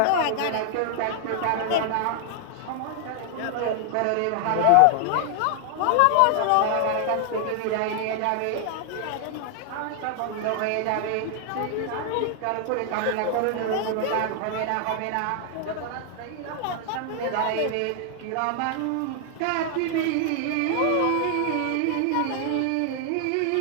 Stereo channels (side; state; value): both; different; correlation 0.00